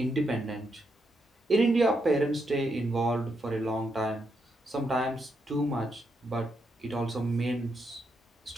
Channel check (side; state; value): both; normal; correlation 0.81